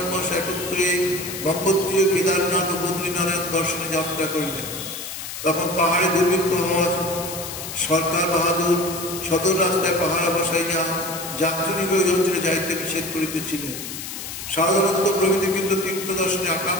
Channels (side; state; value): left; noise; hiss, 8 dB below the sound